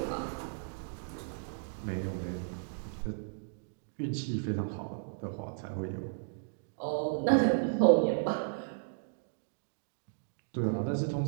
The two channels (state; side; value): silent; left; digital silence